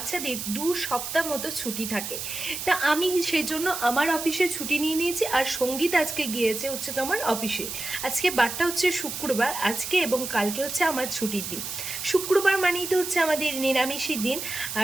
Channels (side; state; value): right; noise; hiss, 6 dB below the sound